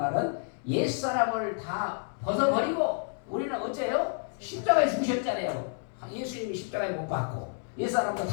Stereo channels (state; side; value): silent; right; digital silence